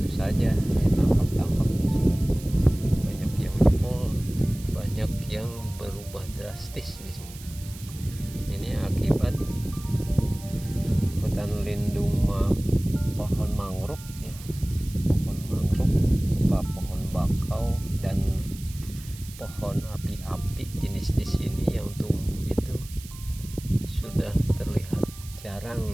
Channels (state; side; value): noise; right; hiss, 17 dB below the sound